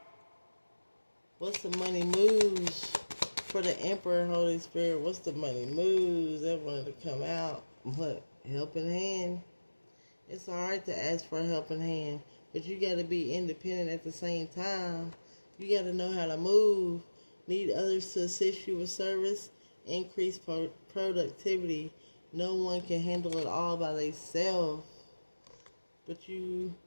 What's the money moves for the Emperor, Holy Spirit? What's the money moves? That wanted to come out. What? Helping hand. It's alright to ask for a helping hand, but you got to be independent at the same time. You got to know how to move. Need others to assist you with service. Increase productivity. No one can handle it all by themselves. But you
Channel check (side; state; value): both; inverted; correlation -1.00